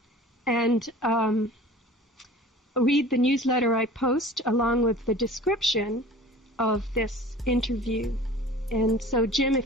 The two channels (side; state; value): both; normal; correlation 0.43